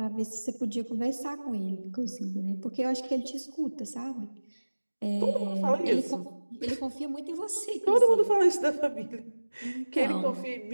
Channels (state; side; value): inverted; both; correlation -1.00